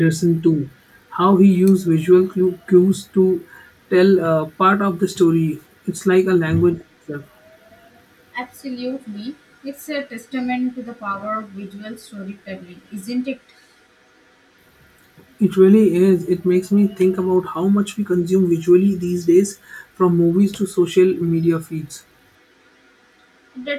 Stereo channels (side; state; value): both; identical; correlation 1.00